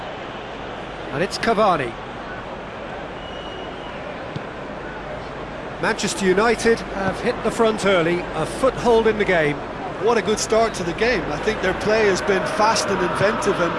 And it's Cavani. Manchester United have hit the front early, a foothold in the game. What a good start to the game. I think their play has been fast and inventive,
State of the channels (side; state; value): both; identical; correlation 1.00